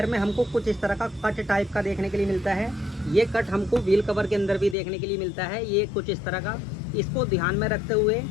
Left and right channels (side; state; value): right; drops out; at 4.8 s